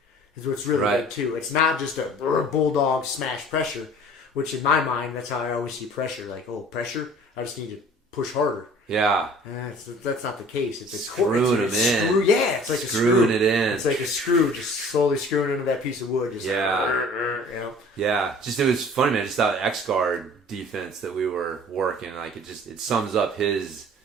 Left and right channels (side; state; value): both; normal; correlation 0.48